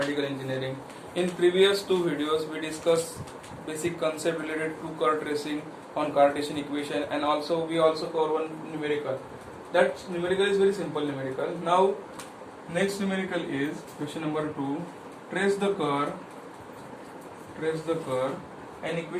engineering. In previous two videos we discussed basic concept related to curve tracing on Cartesian equation, and also we also cover one numerical. That numerical is very simple numerical. Now next numerical is question number 2. Trace the curve and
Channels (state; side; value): identical; both; correlation 1.00